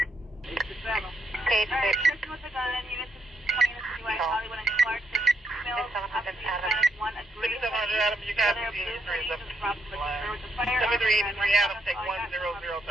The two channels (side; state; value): both; normal; correlation 0.78